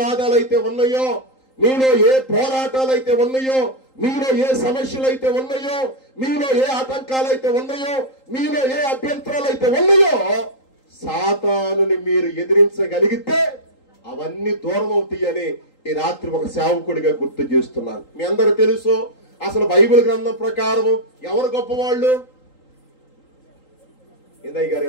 అయితే ఉన్నాయో, మీలో ఏ పోరాటాలు అయితే ఉన్నాయో, మీలో ఏ సమస్యలు అయితే ఉన్నాయో, మీలో ఏ ఆటంకాలు అయితే ఉన్నాయో, మీలో ఏ అభ్యంతరాలు అయితే ఉన్నాయో, సాతానుని మీరు ఎదిరించగలిగితే అవన్నీ దూరం అవుతాయని ఈ రాత్రి ఒక సేవకుడిగా గుర్తు చేస్తున్నాను. మీ అందరూ తెలుసు, అసలు బైబిల్ గ్రంథం ప్రకారం ఎవరు గొప్పవాళ్ళు? ఇందయ్య గారు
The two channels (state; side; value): late; right; 3.8 ms